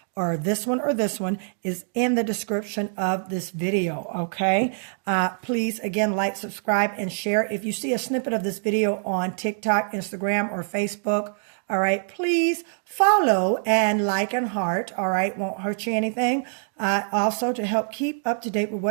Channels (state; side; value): silent; left; digital silence